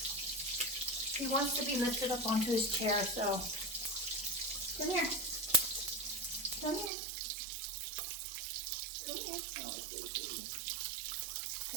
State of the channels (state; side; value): drops out; left; at 6.9 s